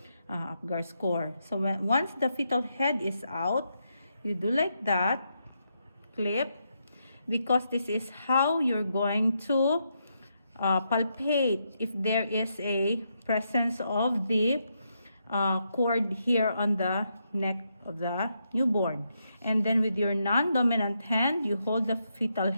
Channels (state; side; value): inverted; both; correlation -0.81